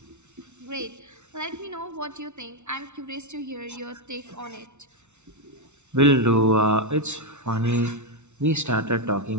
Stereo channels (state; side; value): late; left; 0.82 ms